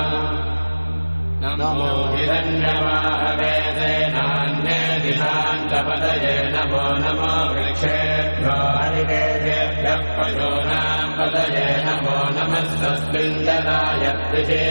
नमो हिरण्यवाहवे सेनान्ये दिशान्तपतये नमो नमो वृक्षेभ्यो हरिकेभ्यः पशूनाम् पतये नमो नमः सस्मिञ्जनाय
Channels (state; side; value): inverted; both; correlation -1.00